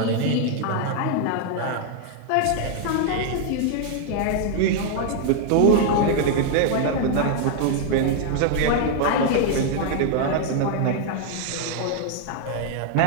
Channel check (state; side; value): different; both; correlation 0.00